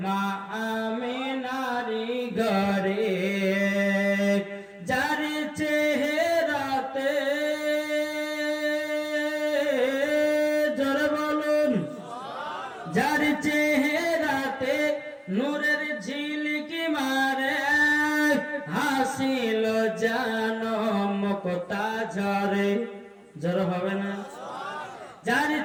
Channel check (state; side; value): identical; both; correlation 1.00